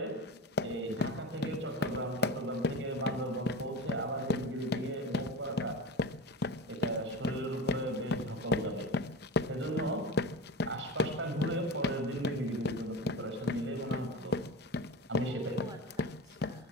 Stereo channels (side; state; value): both; normal; correlation 0.28